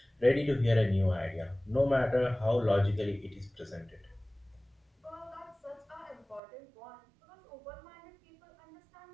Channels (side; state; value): left; drops out; at 6.4 s